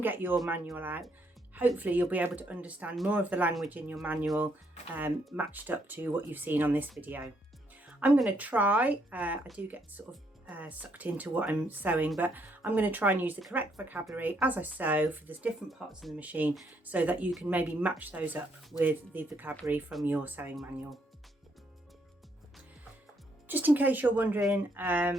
get your manual out, hopefully you'll be able to understand more of the language in your manual matched up to what you've seen on this video. I'm going to try, I do get sort of sucked into what I'm sewing, but I'm going to try and use the correct vocabulary as I sew for the different parts of the machine so that you can maybe match those up with the vocabulary from your sewing manual. Just in case you're wondering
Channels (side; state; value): both; normal; correlation 0.73